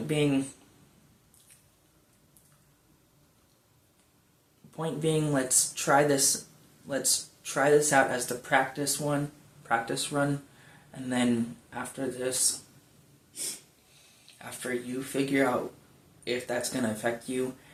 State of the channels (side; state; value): both; identical; correlation 1.00